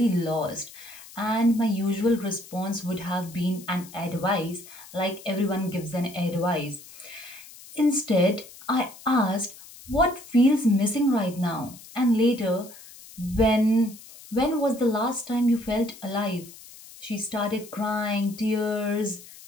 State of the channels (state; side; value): noise; left; hiss, 19 dB below the sound